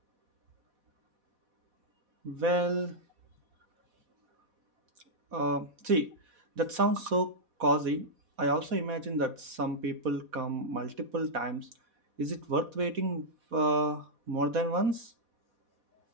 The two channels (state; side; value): late; left; 4.1 ms